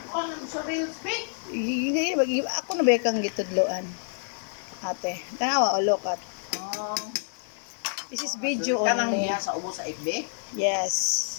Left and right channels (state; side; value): silent; right; digital silence